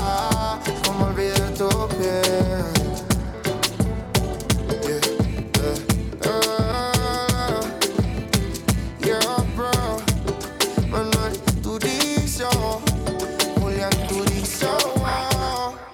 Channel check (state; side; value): identical; both; correlation 1.00